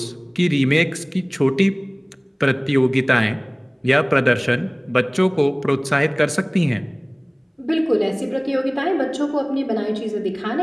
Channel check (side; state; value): both; identical; correlation 1.00